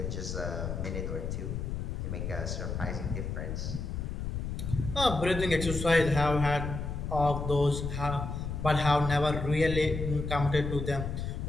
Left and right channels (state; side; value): noise; left; rumble, 4 dB below the sound